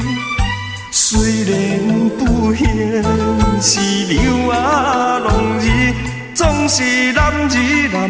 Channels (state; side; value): identical; both; correlation 1.00